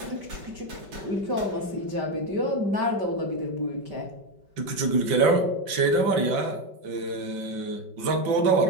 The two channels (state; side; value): late; left; 5.2 ms